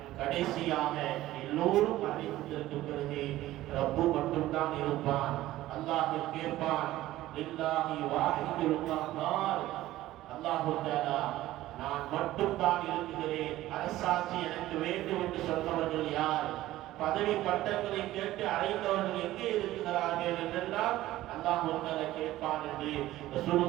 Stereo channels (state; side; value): quieter; left; 15.5 dB